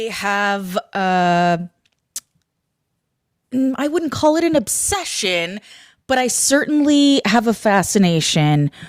have, I wouldn't call it an obsession, but I certainly have a fascination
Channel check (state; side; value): identical; both; correlation 1.00